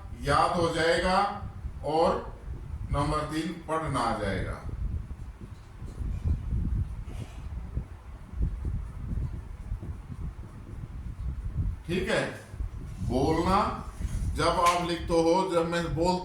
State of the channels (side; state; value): both; identical; correlation 1.00